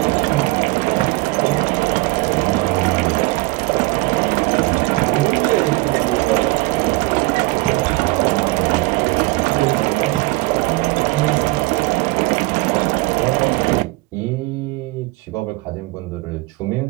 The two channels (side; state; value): left; quieter; 23.0 dB